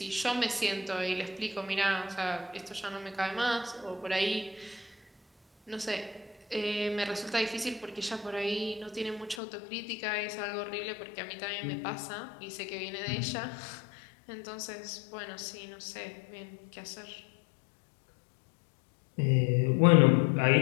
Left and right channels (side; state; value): right; drops out; at 9.4 s